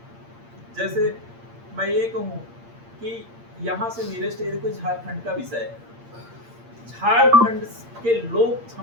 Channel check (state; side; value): late; left; 8.7 ms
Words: जैसे मैं ये कहूँ कि यहाँ से नियरेस्ट एरिया कोई झारखंड का विषय है। झारखंड के लोग